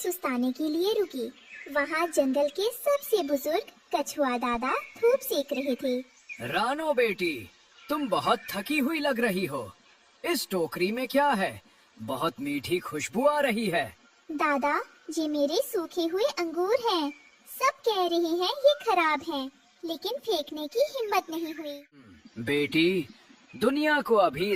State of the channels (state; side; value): identical; both; correlation 1.00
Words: के लिए रुकी। वहाँ जंगल के सबसे बुजुर्ग कछुआ दादा धूप सेक रहे थे। रानो बेटी, तुम बहुत थकी हुई लग रही हो। इस टोकरी में क्या है? बहुत मीठी खुशबू आ रही है। दादा, ये मेरे सूखे हुए अंगूर हैं। सब कह रहे हैं ये खराब हैं, लेकिन फेंकने की हिम्मत नहीं हुई। बेटी, दुनिया को अभी